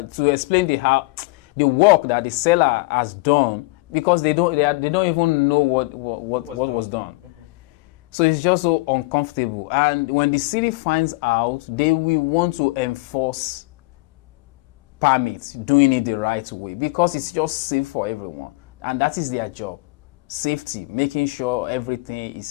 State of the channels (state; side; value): quieter; right; 24.3 dB